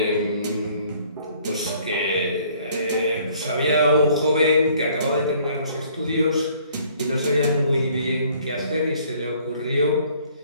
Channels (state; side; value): inverted; both; correlation -0.59